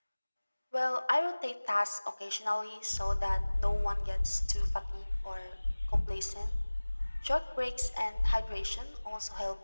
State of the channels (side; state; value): both; inverted; correlation -1.00